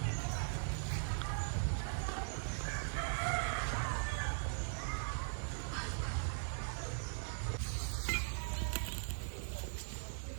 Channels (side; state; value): left; silent; digital silence